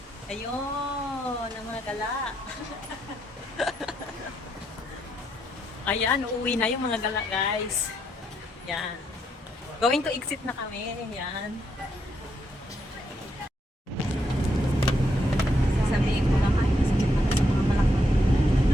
Ayun, ang mga gala. Ayan, uuwi na yung mga gala guys. Yan. Going to exit na kami. Yan. Sasabihin ko naman, kasi sa mga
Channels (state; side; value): normal; both; correlation 0.77